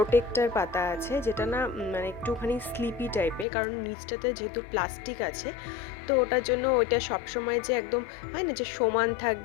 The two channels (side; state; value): right; drops out; at 3.5 s